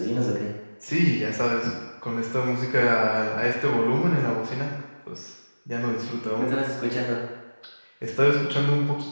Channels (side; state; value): both; inverted; correlation -1.00